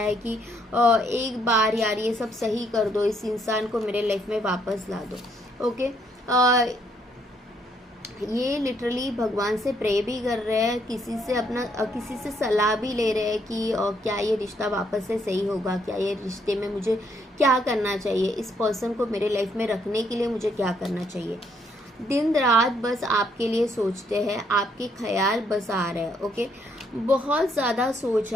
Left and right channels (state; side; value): normal; both; correlation 0.71